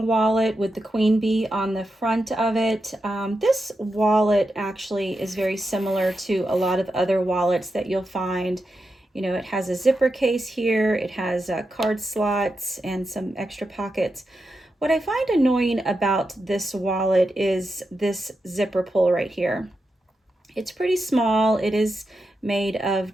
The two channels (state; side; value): normal; both; correlation 0.88